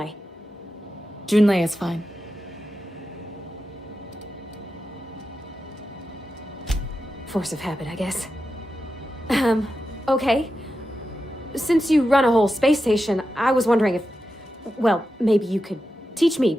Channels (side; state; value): both; normal; correlation 0.90